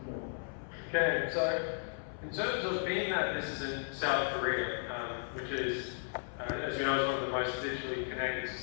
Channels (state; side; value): silent; right; 54 dB below the other